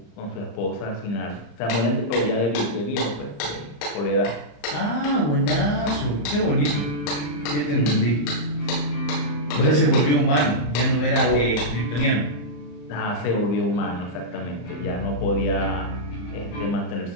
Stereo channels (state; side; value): late; right; 34 ms